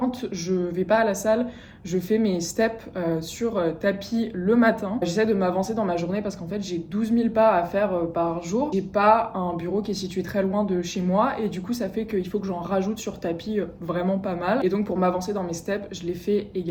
je vais pas à la salle, je fais mes steps sur tapis le matin. J'essaie de m'avancer dans ma journée parce qu'en fait, j'ai 12 000 pas à faire par jour. J'ai pas un bureau qui est situé très loin de chez moi et du coup, ça fait qu'il faut que j'en rajoute sur tapis vraiment pas mal. Et donc pour m'avancer dans mes steps, je les fais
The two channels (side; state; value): both; identical; correlation 1.00